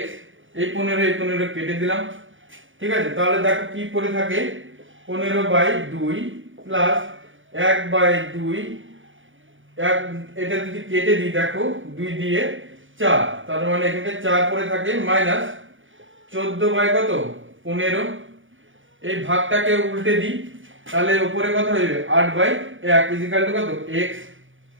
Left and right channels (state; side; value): late; left; 0.57 ms